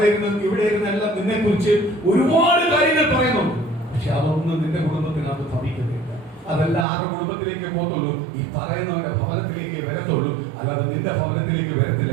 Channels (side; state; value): left; drops out; at 6.9 s